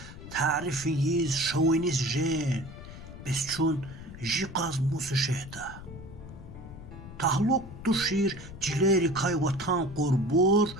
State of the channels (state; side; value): noise; left; rumble, 14 dB below the sound